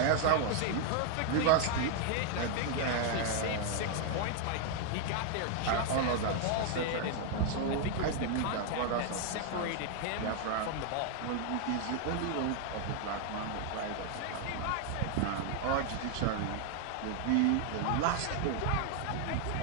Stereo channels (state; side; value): different; both; correlation 0.00